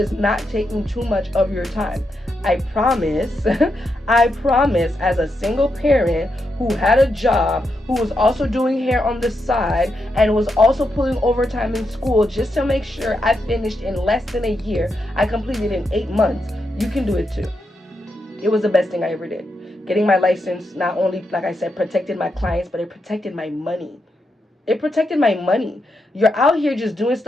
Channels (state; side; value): normal; both; correlation 0.84